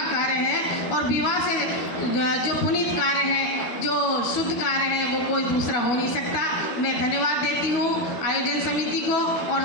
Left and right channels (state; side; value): late; right; 12 ms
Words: कार्य है और विवाह से जो पुनीत कार्य है, जो शुद्ध कार्य है, वो कोई दूसरा हो नहीं सकता। मैं धन्यवाद देती हूँ आयोजन समिति को और